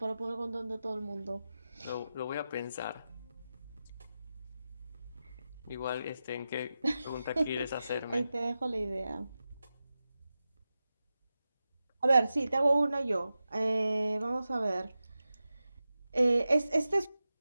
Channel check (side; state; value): both; inverted; correlation -0.92